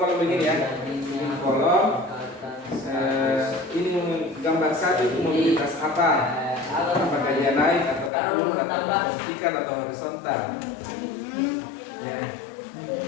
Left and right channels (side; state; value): right; drops out; at 8.1 s